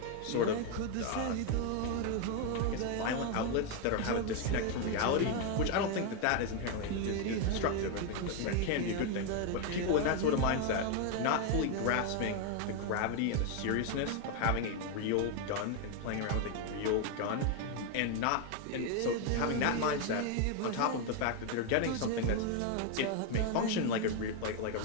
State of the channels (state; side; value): different; both; correlation 0.01